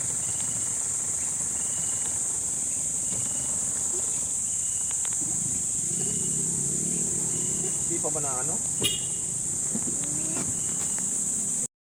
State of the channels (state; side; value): identical; both; correlation 1.00